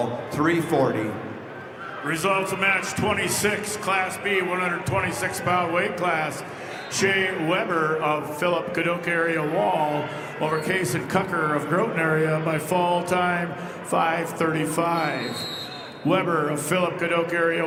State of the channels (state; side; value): identical; both; correlation 1.00